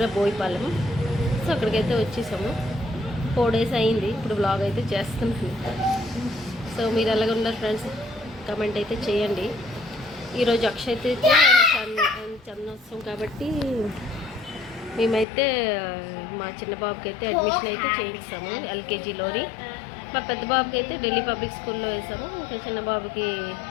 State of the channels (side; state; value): right; drops out; at 15.2 s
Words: బోయిపాలెం. సో అక్కడికైతే వచ్చేసాము. 4 days అయింది. ఇప్పుడు బ్లాగ్ అయితే చేస్తున్నాను. సో మీరు ఎలాగ ఉన్నారు ఫ్రెండ్స్, కమెంట్ అయితే చేయండి. ఈరోజు అక్షయ్ అయితే చందనోత్సవం కాబట్టి మేమైతే మా చిన్న బాబుకి అయితే అడ్మిషన్ అయితే చేయిస్తాము ఎల్కేజీలోని. మా పెద్ద బాబుకి అయితే ఢిల్లీ పబ్లిక్ స్కూల్లో వేసాము. ఇంకా చిన్న బాబుకి